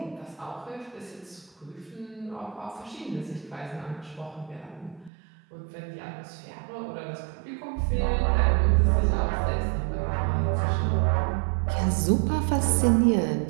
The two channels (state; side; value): drops out; left; at 5.1 s